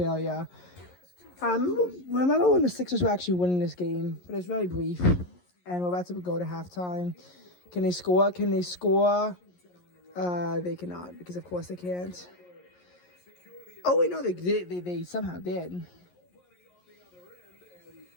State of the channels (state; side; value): late; right; 11 ms